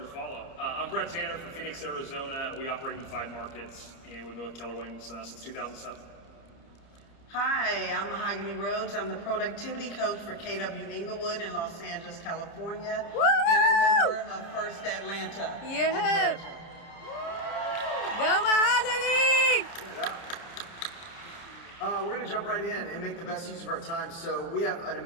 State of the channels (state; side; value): late; right; 30 ms